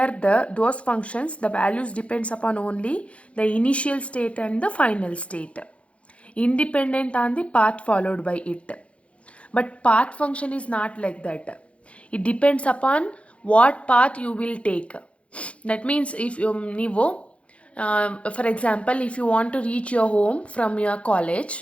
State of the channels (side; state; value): right; late; 0.062 ms